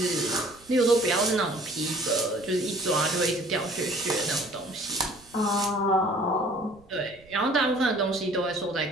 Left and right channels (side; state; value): right; noise; rumble, 27 dB below the sound